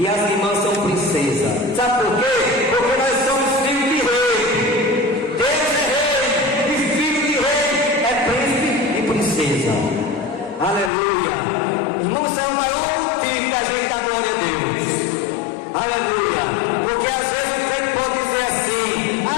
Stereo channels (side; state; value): right; drops out; at 10.9 s